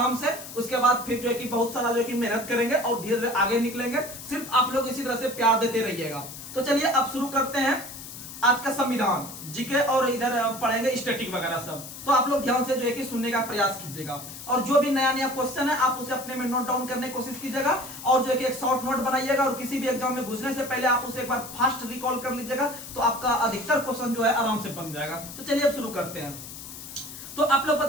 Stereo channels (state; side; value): noise; left; hiss, 12 dB below the sound